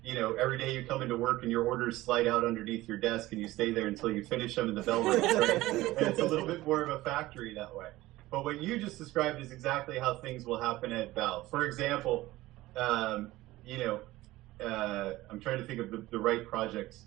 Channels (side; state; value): left; quieter; 17.6 dB